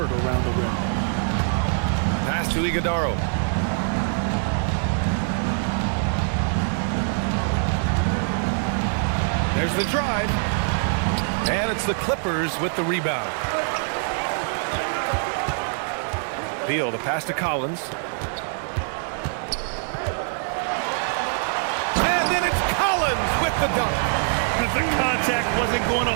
around the rim. Pass to Iguodala. There's the drive. And it's the Clippers with the rebound. Beal, the pass to Collins. With the dunk. If the contact wasn't going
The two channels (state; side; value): silent; left; 63 dB below the other